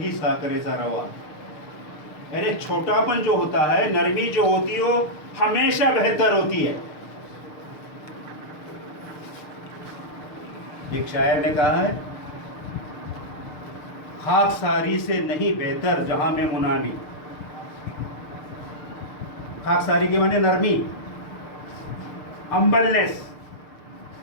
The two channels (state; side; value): late; right; 6.6 ms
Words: साकरेचा रवा। अरे छोटापन जो होता है, नरमी जो होती है, वो हमेशा बेहतर होती है। एक शायर ने कहा है, खाकसारी से नहीं बेहतर जहां में मुनामी। खाकसारी के माने नरमी, हम्बलनेस,